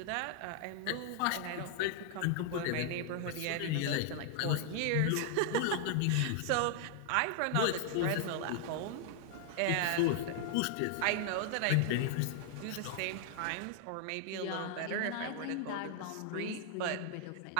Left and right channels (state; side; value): different; both; correlation 0.00